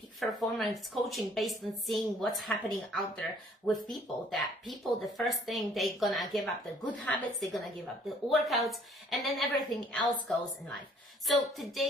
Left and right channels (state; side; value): normal; both; correlation 0.59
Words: Performance Coaching based on seeing what's happening out there with people. The first thing, they're gonna give up the good habits, they're gonna give up the workouts, and then everything else goes in life. So